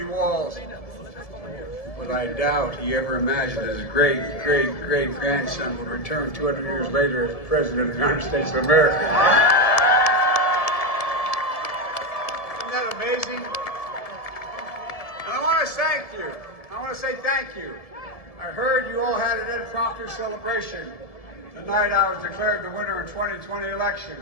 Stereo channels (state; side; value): late; right; 1.7 ms